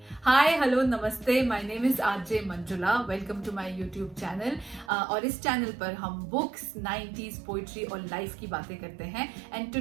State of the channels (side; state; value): left; drops out; at 4.9 s